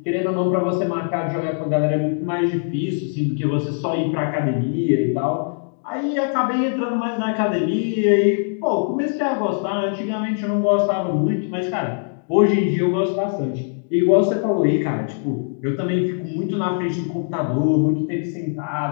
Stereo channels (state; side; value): silent; right; 64 dB below the other